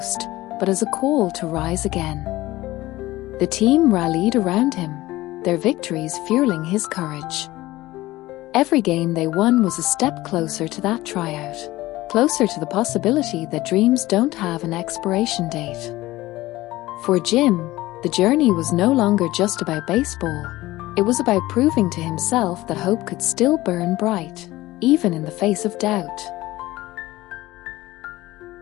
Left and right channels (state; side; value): quieter; right; 17.7 dB